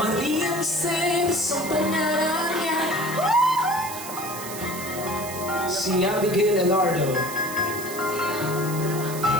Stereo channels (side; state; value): right; noise; hiss, 10 dB below the sound